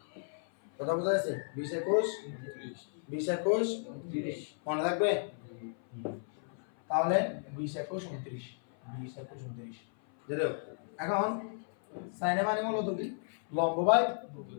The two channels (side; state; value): right; silent; 55 dB below the other